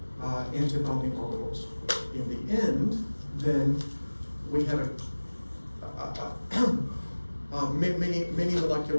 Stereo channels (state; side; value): inverted; both; correlation -1.00